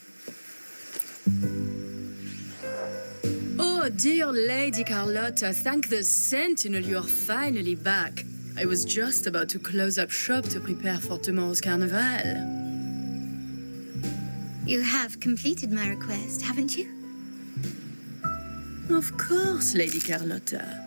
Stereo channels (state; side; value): inverted; both; correlation -1.00